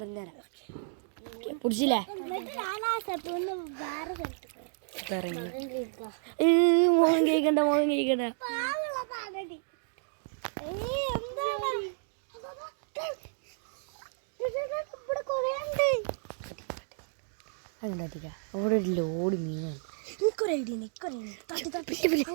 പിടിച്ചില്ലേ? മോഹൻ കേൾക്കണ്ട. അതുണ്ടാ അവിടെ ഒരു ലോഡ് മീനാണ്.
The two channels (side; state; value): left; silent; digital silence